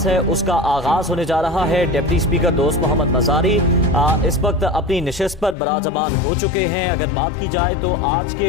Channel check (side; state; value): right; drops out; at 5.6 s